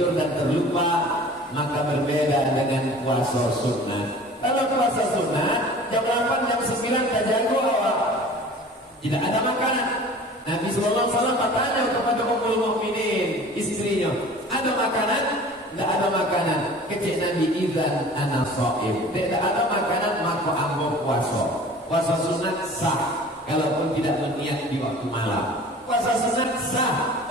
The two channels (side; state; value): both; normal; correlation 0.44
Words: dan terlupa. Maka berbeda dengan puasa sunnah. Kalau puasa sunnah jam 8 jam 9 tak jago awak, tidak ada makanan. Nabi sallallahu alaihi wasallam bertanya kepada Ummul Mukminin, istrinya, ada makanan? Tidak ada makanan. Kecik Nabi, idzan ana shaim. Tidak ada makanan maka ambo puasa. Puasa sunat sah kalaupun tidak berniat di waktu malam. Puasa sunat sah